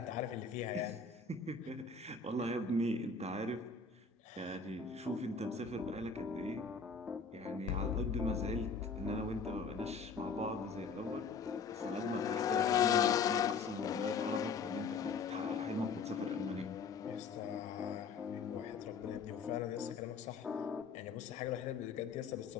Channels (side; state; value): right; quieter; 5.0 dB